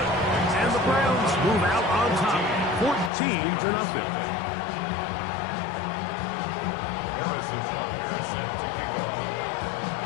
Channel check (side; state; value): right; drops out; at 3.1 s